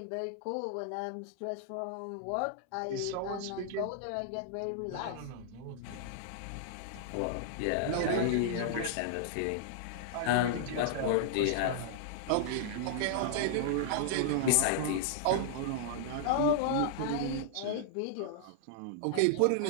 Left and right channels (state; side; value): different; both; correlation -0.01